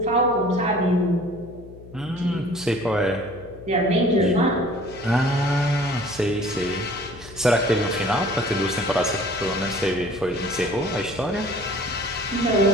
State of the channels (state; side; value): noise; left; hum, 18 dB below the sound